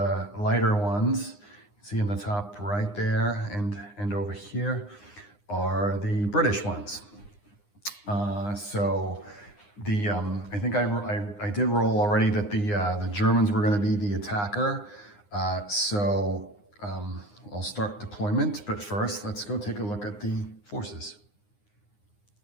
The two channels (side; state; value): right; late; 9.8 ms